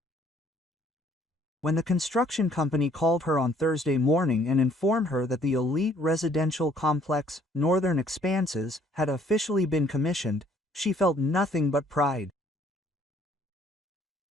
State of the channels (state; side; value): normal; both; correlation 0.62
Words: When the construction company called her on Thursday morning and informed her that the elite residential complex, Northern Expanses, had officially been commissioned, she felt nothing but pride.